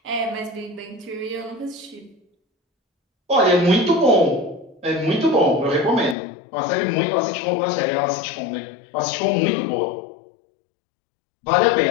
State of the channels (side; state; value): right; drops out; at 6.2 s